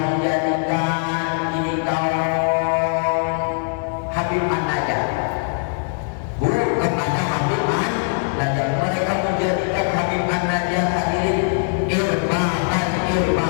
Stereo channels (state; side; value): silent; right; digital silence